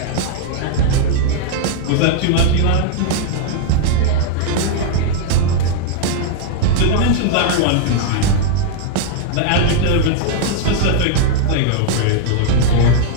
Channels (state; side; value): different; both; correlation -0.01